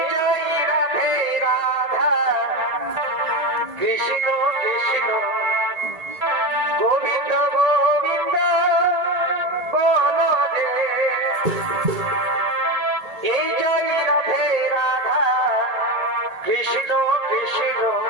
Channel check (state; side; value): late; left; 1.8 ms